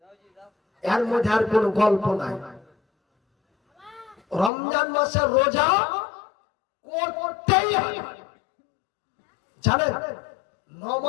এর মধ্যে আর কোনো গল্প নাই। রমজান মাসের রোজা করতেই হবে। জানেন,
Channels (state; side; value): drops out; right; at 4.5 s